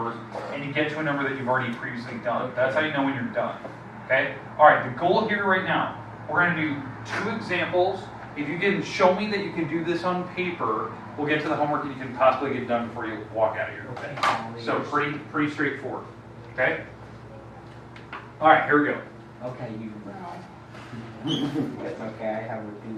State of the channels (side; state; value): both; identical; correlation 1.00